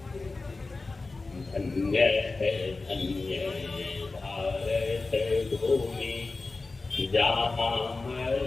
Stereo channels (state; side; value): quieter; right; 3.6 dB